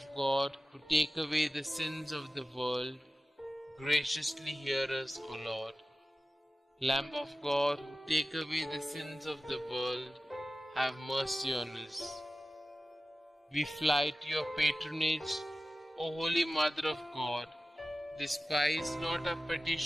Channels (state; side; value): normal; both; correlation 0.95